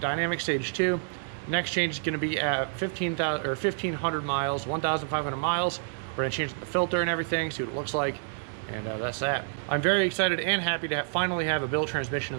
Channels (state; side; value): silent; left; 59 dB below the other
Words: Dynamic Stage 2, next change is gonna be at 1,500 miles, 1,500 miles. We're gonna change the filter and everything, see what it looks like, and that's that. I'm very excited and happy to finally have a built transmission in